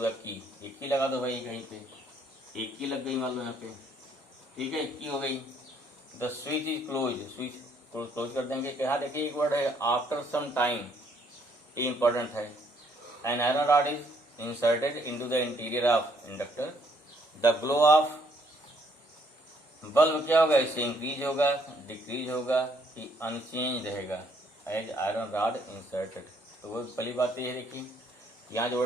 the key. एक की लगा दो भाई, कहीं पे एक की लग गई मान लो यहाँ पे, ठीक है, एक की हो गई। The switch is close, switch close कर देंगे। क्या देखिए एक वर्ड है आफ्टर सम टाइम, ये इंपॉर्टेंट है। An iron rod is inserted into the interior of inductor. The glow of bulb क्या होगा, इससे इंक्रीज होगा, डिक्रीज होगा कि अनचेंज रहेगा एज आयरन रॉड इंसर्टेड। तो वो पहली बात ये है, देखिए यहाँ जो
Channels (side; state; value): both; normal; correlation 0.67